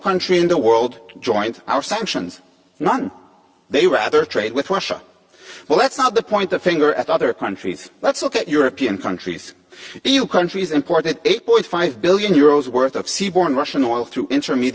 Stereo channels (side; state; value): both; identical; correlation 1.00